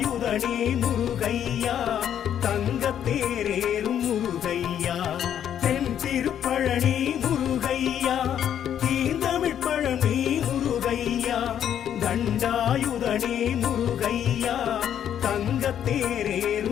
முருகையா தங்கத்தேரேறும் முருகையா தென் திருப்பழனி முருகையா தீந்தமிழ் பழனி முருகையா தண்டாயுதனே முருகையா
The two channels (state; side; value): quieter; right; 9.7 dB